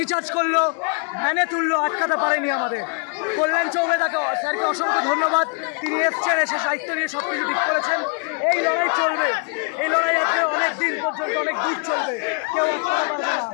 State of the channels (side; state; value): right; quieter; 38.4 dB